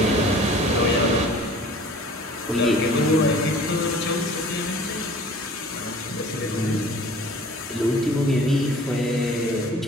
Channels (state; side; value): normal; both; correlation 0.47